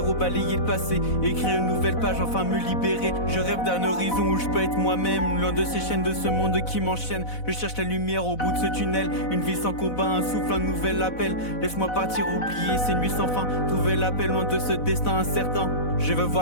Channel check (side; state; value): right; late; 4.0 ms